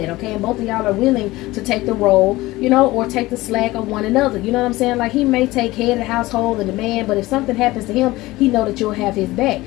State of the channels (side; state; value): right; quieter; 19.0 dB